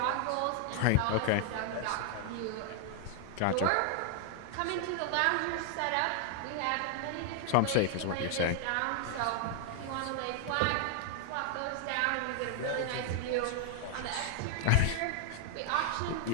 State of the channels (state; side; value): different; both; correlation 0.00